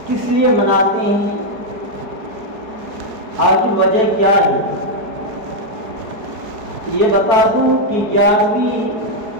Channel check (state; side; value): late; left; 4.7 ms